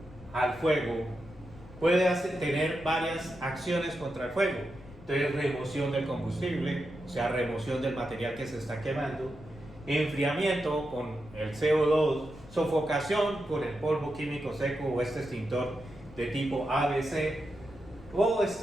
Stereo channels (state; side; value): noise; left; rumble, 19 dB below the sound